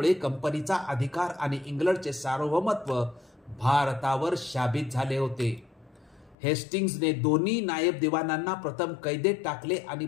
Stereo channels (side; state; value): right; drops out; at 6.4 s